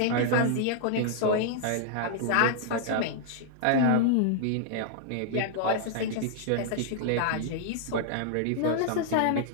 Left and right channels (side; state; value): both; different; correlation -0.01